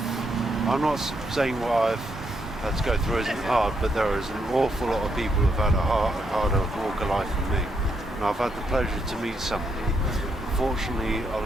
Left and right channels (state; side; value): normal; both; correlation 0.78